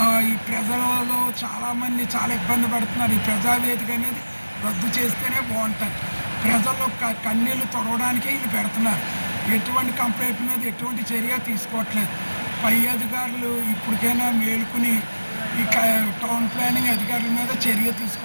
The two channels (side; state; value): both; inverted; correlation -1.00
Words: ఈ ప్రజలలో చాలామంది చాలా ఇబ్బంది పడుతున్నారు. ఈ ప్రజావేదిక అనేది రద్దు చేస్తేనే బాగుంటుంది. ప్రజల్లో కన్నీళ్లు తొడవడానికే ఇది పెడుతున్నారు. ఎటువంటి కంప్లైంట్ మీద ఎటువంటి చర్య తీసుకోవట్లేదు. పై అధికారులు ఇప్పటికైనా మేలుకుని ఈ టౌన్ ప్లానింగ్ అధికారుల మీద చర్య